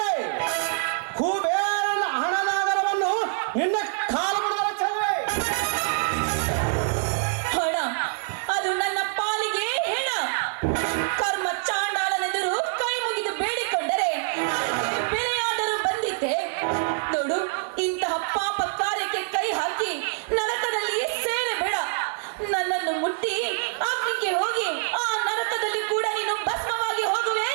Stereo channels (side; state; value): left; silent; 61 dB below the other